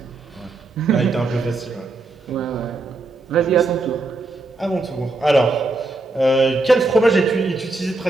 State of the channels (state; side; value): quieter; left; 3.2 dB